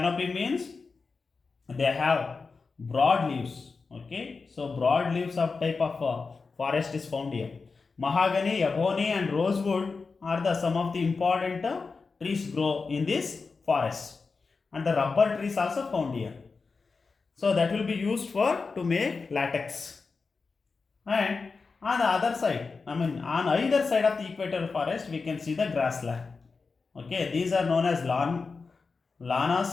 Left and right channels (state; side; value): quieter; right; 4.5 dB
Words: means they have broad leaves. Okay, so broad leaves of type of forest is found here. Mahogany, ebony and rosewood are the some of the important trees grow in this forest, and the rubber trees also found here. So that will be used for to make latex. And on the other side, on either side of the equatorial forest, we can see the grassland. Okay, these are known as